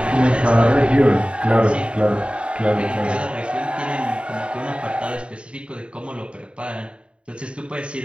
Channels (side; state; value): left; late; 0.057 ms